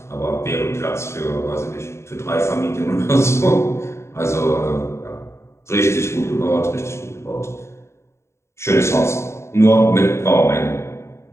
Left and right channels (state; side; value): late; right; 0.13 ms